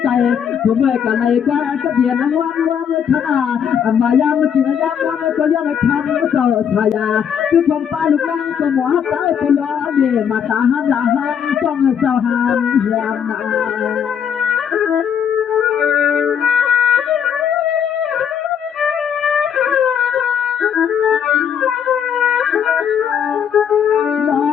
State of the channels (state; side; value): quieter; right; 8.1 dB